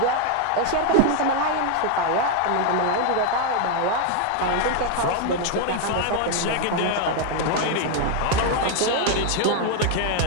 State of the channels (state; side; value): different; both; correlation 0.01